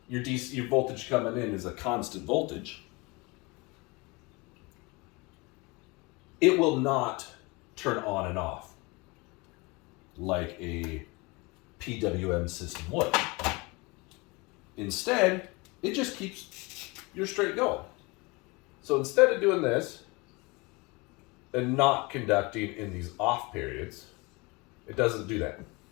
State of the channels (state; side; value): quieter; right; 26.0 dB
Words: your voltage coming in is a constant voltage, it will not turn on and off like a Pwm system would. Instead, it just keeps your straight going. So instead of doing this and not conducting in these off periods, it doesn't do that.